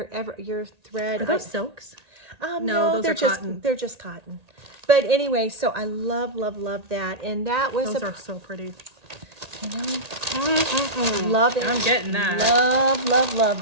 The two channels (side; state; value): left; late; 1.8 ms